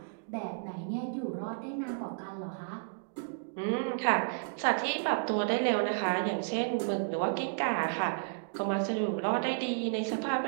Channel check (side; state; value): left; silent; digital silence